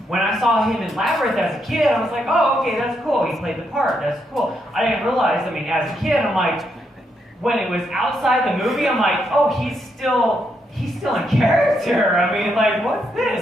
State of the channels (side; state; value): both; normal; correlation 0.79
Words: when I saw him in Labyrinth as a kid, I was like, oh, okay, that's cool. He played the part. That's cool. I didn't realize, as a kid, I'm like, when it was outside the movie, I'm like, oh, he's still in character. What's